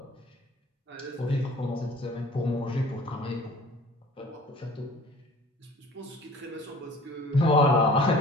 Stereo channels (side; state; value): both; normal; correlation 0.48